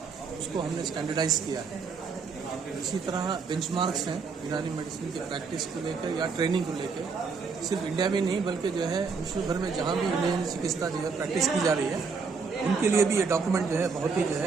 उसको हमने स्टैंडर्डाइज किया है। इसी तरह बेंचमार्क्स हैं यूनानी मेडिसिन की प्रैक्टिस को लेकर या ट्रेनिंग को लेकर, सिर्फ इंडिया में नहीं बल्कि जो है विश्व भर में जहाँ भी यूनानी चिकित्सा जो है प्रैक्टिस की जा रही है उनके लिए भी ये डॉक्यूमेंट जो है बहुत ही जो है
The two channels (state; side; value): quieter; left; 5.1 dB